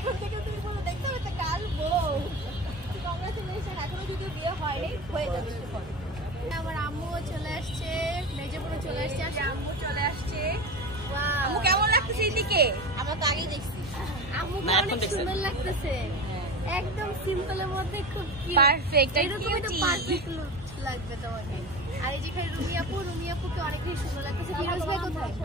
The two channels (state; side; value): normal; both; correlation 0.28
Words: থেকে তুমি বলো দেখতে হবে একটা কাল বউ। কংগ্রাচুলেশন, এখনো যদিও বিয়ে হয়নি, হয়ে যাবে একটু পরে। আমার আম্মুও চলে আসছে, মেজপুরে চলে আসছে, আর আম্মু চলে আসছে। Wow. আম্মু কেমন লাগতেছে এদিকে? আমরা তো আগেই দেখছি। আম্মুকে অনেক সুন্দর লাগতেছে, একদম সিম্পলের মধ্যে খুব Perfect, এরকম একটা cutie. পারফেক্ট লুক লাগবে তোমাকে। আর এই যেখানে রুমি আপুকে অনেক বেশি সুন্দর লাগতেছে। ফিরোজ ভাই কোথায়?